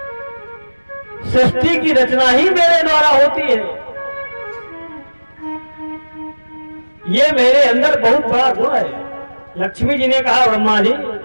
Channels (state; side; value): inverted; both; correlation -1.00